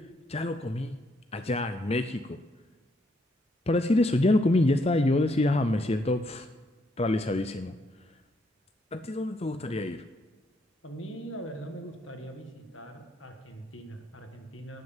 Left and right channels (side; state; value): both; normal; correlation 0.74